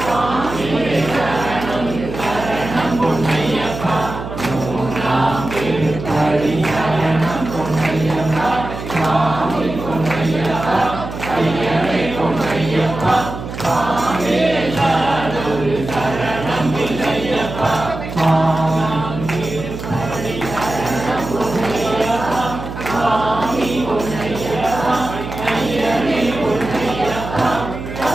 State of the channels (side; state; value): right; noise; hum, 9 dB below the sound